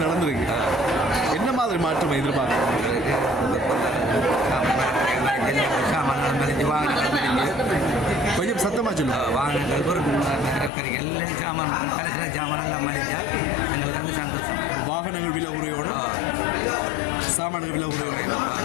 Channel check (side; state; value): right; drops out; at 10.7 s